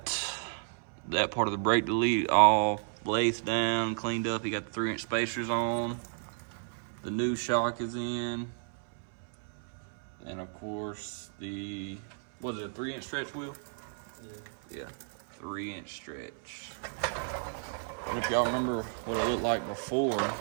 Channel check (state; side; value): silent; left; 56 dB below the other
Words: that part of the brake delete all lathed down, cleaned up. You got the 3-inch spacers on. The new shock is in. And of course the, was it a 3-inch stretch wheel? Yeah, 3-inch stretch. And if y'all remember what it looked like before,